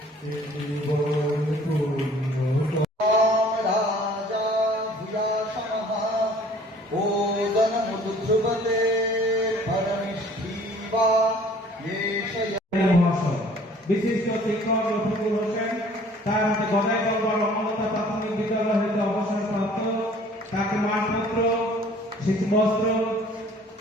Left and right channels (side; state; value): both; normal; correlation 0.53